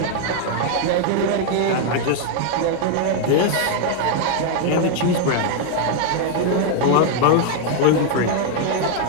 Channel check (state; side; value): different; both; correlation 0.00